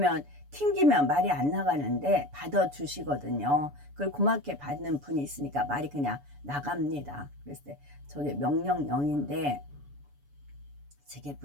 튕기면 말이 안 나가는데 받아주시거든요. 그걸 고맙게 받는 분이 있으니까 말이 그냥 나갑니다. 그랬을 때 저게 명령령인데 저게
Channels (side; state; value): left; late; 7.0 ms